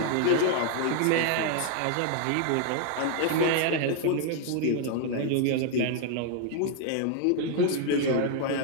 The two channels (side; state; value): both; different; correlation 0.00